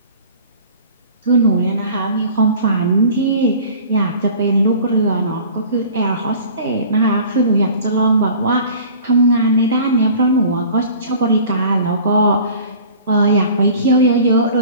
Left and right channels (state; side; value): inverted; both; correlation -0.45